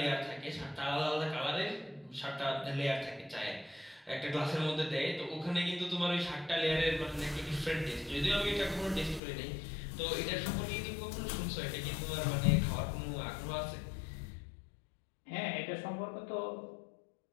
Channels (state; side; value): drops out; right; at 9.2 s